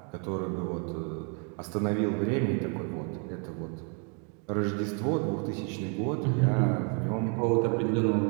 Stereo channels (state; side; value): quieter; left; 38.8 dB